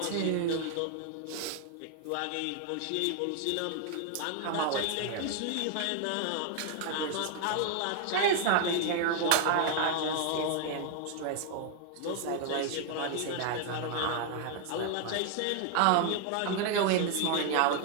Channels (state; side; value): different; both; correlation 0.00